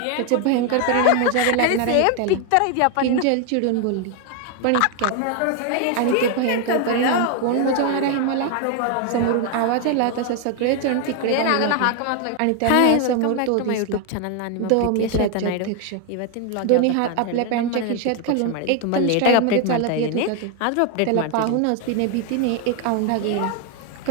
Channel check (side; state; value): both; different; correlation 0.01